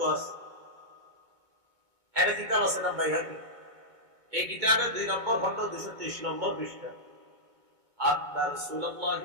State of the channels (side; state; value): left; late; 2.2 ms